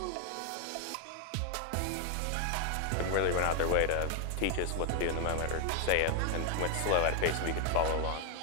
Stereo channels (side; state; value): both; different; correlation 0.00